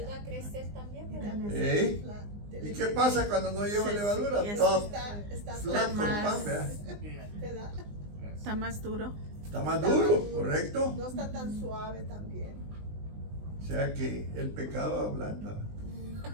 a crecer también, ¿verdad? ¿Eh? ¿Y qué pasa cuando no lleva levadura? Sí, Todo Está flaco el más- pan, ¿verdad? ¿verdad? Está más duro. Está más duro, ¿correcto? No está tan suave también. O sea que el pecado ablanda.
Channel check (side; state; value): left; late; 20 ms